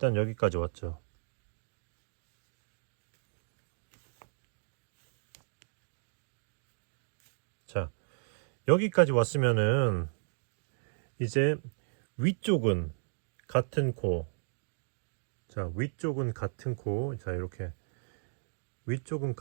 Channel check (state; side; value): silent; left; digital silence